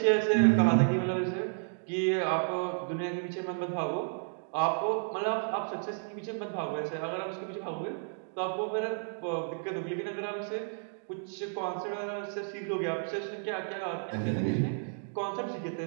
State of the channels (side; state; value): left; silent; digital silence